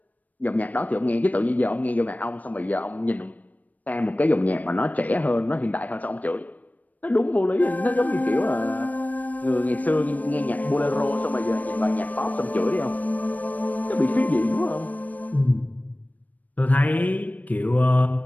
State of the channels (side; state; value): right; late; 0.076 ms